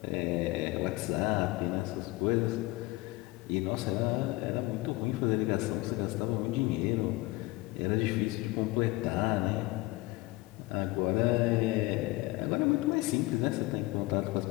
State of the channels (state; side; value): quieter; right; 21.2 dB